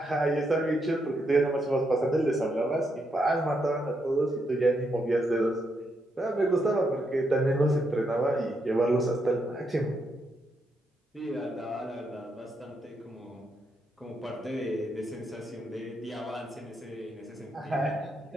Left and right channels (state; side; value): normal; both; correlation 0.80